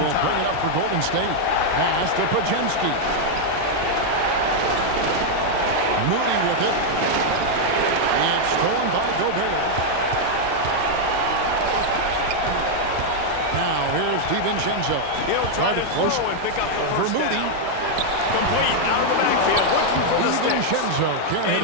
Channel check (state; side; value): different; both; correlation 0.00